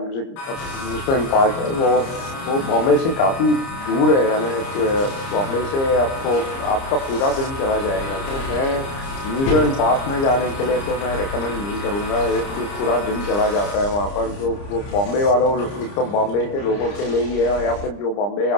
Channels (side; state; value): right; late; 30 ms